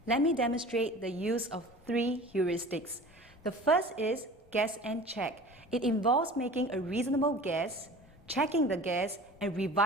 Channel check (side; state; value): both; normal; correlation 0.40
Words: Let me demonstrate the use of 3 heuristics. The first is guess and check. It involves making a reasonable guess, checking the guess, and